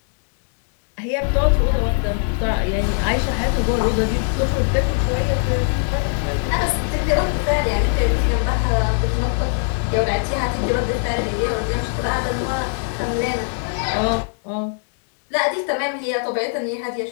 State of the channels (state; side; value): silent; right; 65 dB below the other